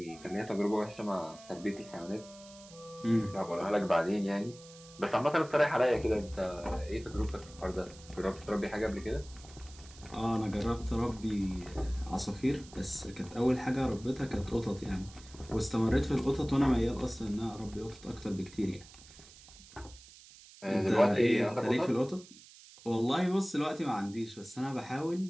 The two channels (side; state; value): right; noise; hiss, 20 dB below the sound